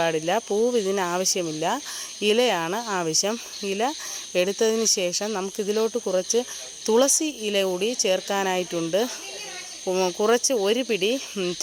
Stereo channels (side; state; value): both; identical; correlation 1.00